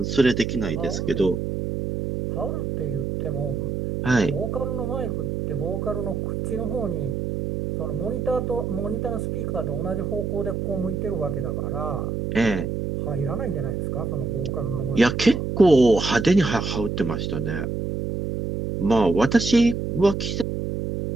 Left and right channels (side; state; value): right; noise; hum, 2 dB below the sound